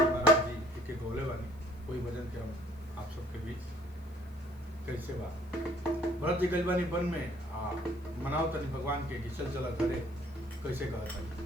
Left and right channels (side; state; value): left; noise; hiss, 29 dB below the sound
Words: महाराज जी के गौले बानी। कोई भजन के हम आप सबके बीच कैसे बा। भरत जी गइल बानी वन में मनाओ तनी भगवान के कि चल चला घरे। कैसे कहता